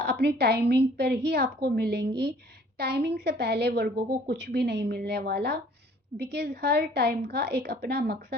टाइमिंग पर ही आपको मिलेंगी। टाइमिंग से पहले वर्गों को कुछ भी नहीं मिलने वाला, बिकॉज़ हर टाइम का एक अपना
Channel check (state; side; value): normal; both; correlation 0.55